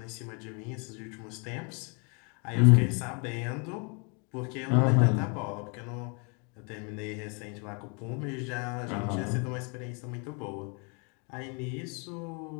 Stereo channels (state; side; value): quieter; right; 35.5 dB